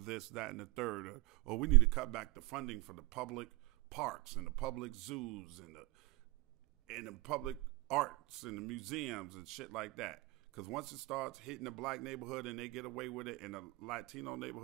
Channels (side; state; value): left; quieter; 22.7 dB